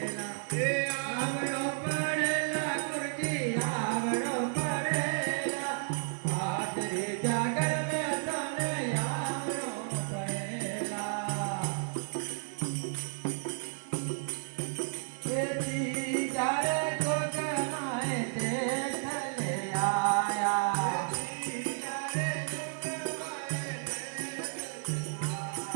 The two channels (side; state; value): left; silent; digital silence